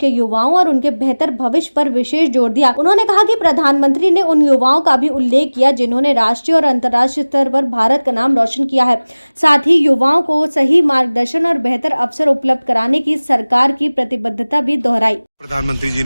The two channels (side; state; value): both; inverted; correlation -1.00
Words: युवाओं और उनके बेहतर भविष्य पर विशेष जोर दिया। उन्होंने कहा कि प्रधानमंत्री ने उन युवाओं का भी उल्लेख किया जिन्होंने राष्ट्रीय और अंतर्राष्ट्रीय स्तर पर भारत का नाम रोशन किया है। साथ ही युवाओं को सही मार्गदर्शन और बेहतर अवसर उपलब्ध कराने की सरकार की प्रतिबद्धता भी दोहराई। प्रधानमंत्री जी